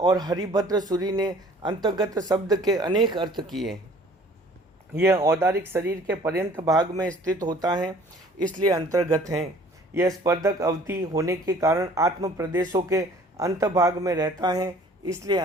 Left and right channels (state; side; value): normal; both; correlation 0.52